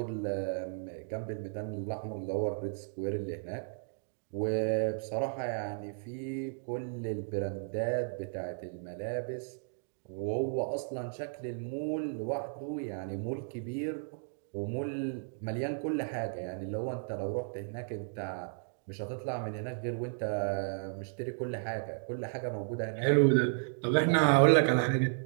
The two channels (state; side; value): silent; left; digital silence